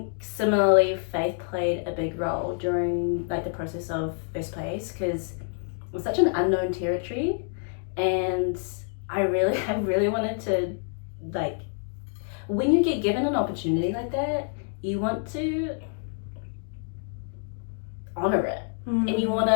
similarly faith played a big role during like the process of first place, because it was such an unknown territory, and I really wanted to, like, when you get given an opportunity like that, you want to honor it, and you want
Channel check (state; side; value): silent; right; 60 dB below the other